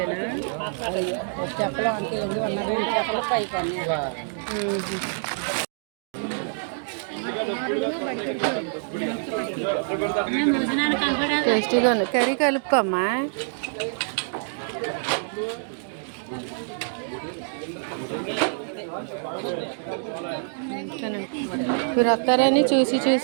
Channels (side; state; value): left; silent; digital silence